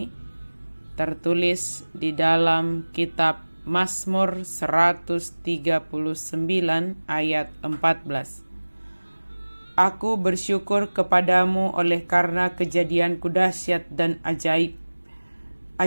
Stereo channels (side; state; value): both; inverted; correlation -1.00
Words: tertulis di dalam kitab Mazmur 139 ayat 14. Aku bersyukur kepadamu oleh karena kejadianku dahsyat dan ajaib.